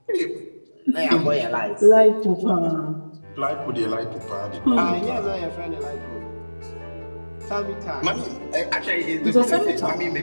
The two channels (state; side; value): inverted; both; correlation -1.00